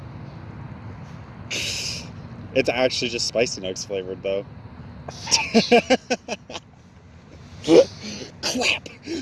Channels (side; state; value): both; identical; correlation 1.00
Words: It's actually just Spicy Nuggs flavored, though. Clap.